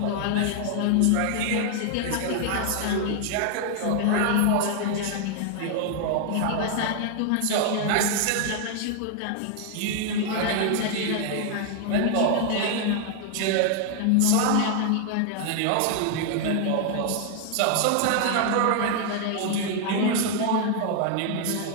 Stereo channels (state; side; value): different; both; correlation 0.00